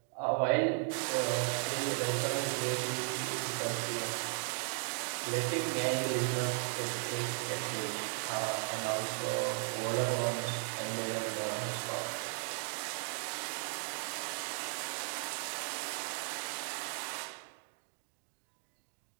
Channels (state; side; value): silent; left; 54 dB below the other